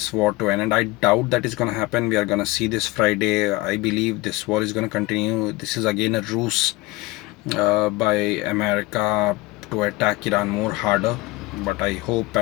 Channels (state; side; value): quieter; right; 20.5 dB